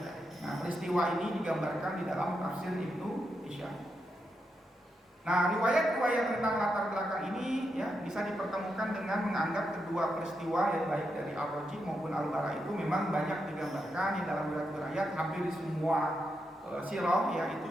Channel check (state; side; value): normal; both; correlation 0.84